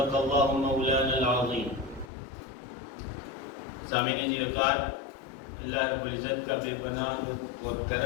اللہ مولانا العظیم۔ سامعین وقار، اللہ رب العزت کا بے پناہ اور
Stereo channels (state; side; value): drops out; right; at 2.1 s